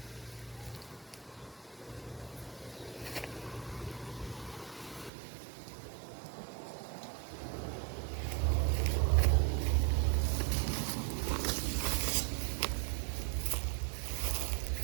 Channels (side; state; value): left; drops out; at 5.1 s